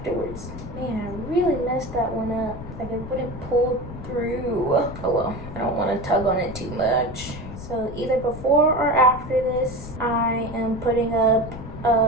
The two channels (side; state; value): left; noise; rumble, 11 dB below the sound